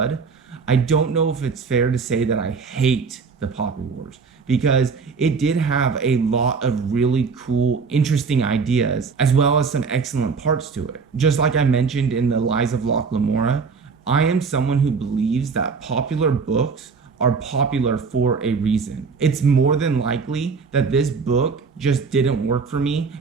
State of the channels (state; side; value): quieter; left; 5.1 dB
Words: I don't know if it's fair to say that I hate The Poppy Wars, because it did have a lot of really cool, interesting ideas, as well as some excellent parts to it. Just like I mentioned in The Lies of Locke Lamora, I am someone who believes that popular books are popular for a reason. It's more than likely that this book just didn't work for me,